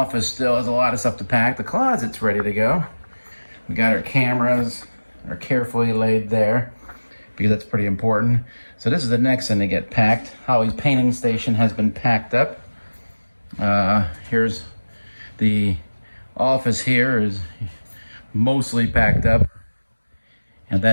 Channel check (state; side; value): inverted; both; correlation -1.00